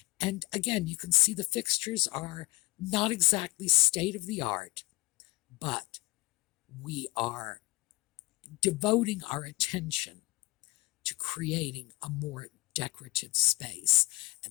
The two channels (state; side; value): quieter; right; 21.0 dB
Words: And again, you can see the fixtures are not exactly state of the art, but we are devoting our attention to creating a more decorative space.